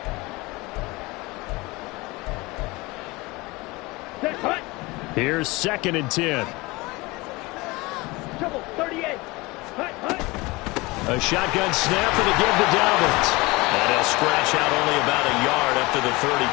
Here's 2nd and 10. Trouble, 38. Hut. A shotgun snap and a give to Dobbins. And he'll scratch out only about a yard up to the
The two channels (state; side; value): quieter; right; 23.1 dB